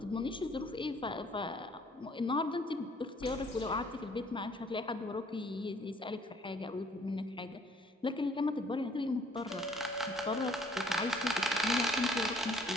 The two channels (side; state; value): both; normal; correlation 0.60